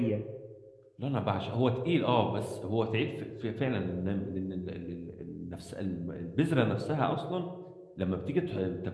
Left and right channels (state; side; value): identical; both; correlation 1.00